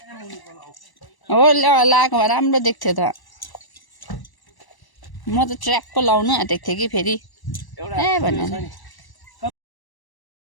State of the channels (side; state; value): right; late; 1.1 ms